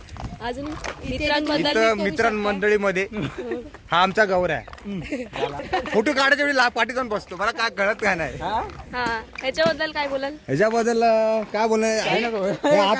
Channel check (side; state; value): both; identical; correlation 1.00